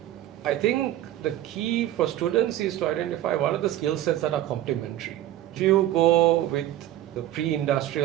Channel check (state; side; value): quieter; left; 13.5 dB